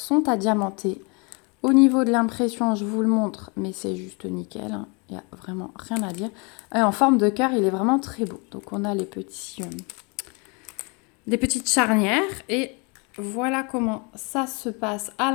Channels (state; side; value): quieter; right; 31.7 dB